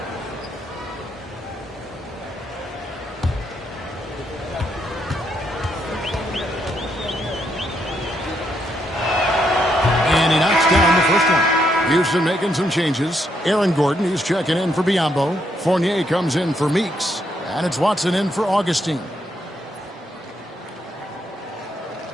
And he knocks down the first one. Houston making some changes. Aaron Gordon, he's checking in for Biyombo. Fournier comes in for Meeks. And it's Watson in for Augustine.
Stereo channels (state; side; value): normal; both; correlation 0.76